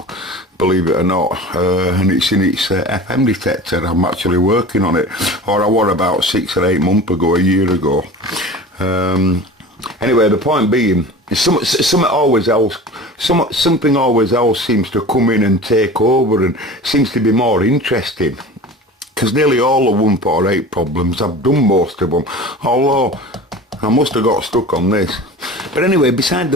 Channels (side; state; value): both; normal; correlation 0.37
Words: believe it or not, and it's in its FM detector. I'm actually working on it, or I was about 6 or 8 months ago, a year ago. Anyway, the point being, something always else seems to come in and take over, and seems to be more interesting. Because nearly all the 148 problems, I've done most of them, although I must have got stuck on this. But anyway, beside